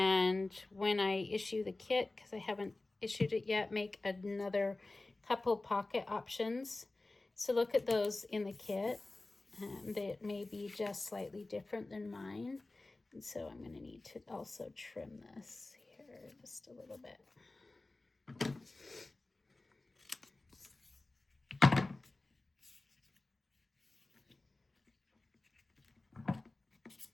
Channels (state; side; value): quieter; right; 3.1 dB